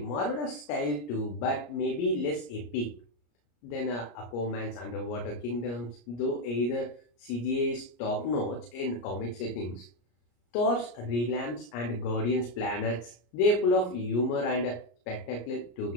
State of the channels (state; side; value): late; right; 34 ms